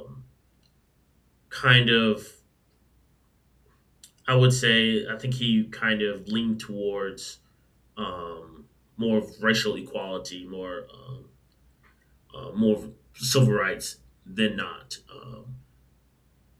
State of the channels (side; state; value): both; identical; correlation 1.00